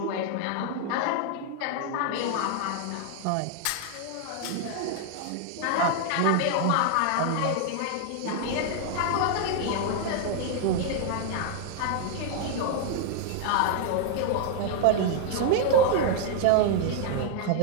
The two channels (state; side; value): different; both; correlation 0.00